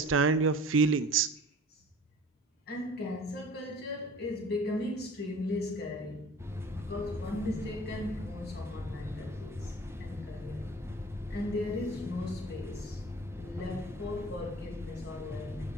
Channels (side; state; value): both; normal; correlation 0.44